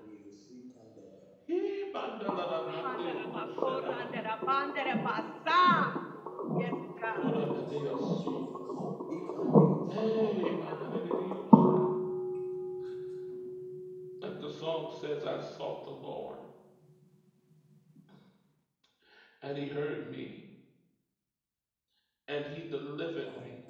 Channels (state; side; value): identical; both; correlation 1.00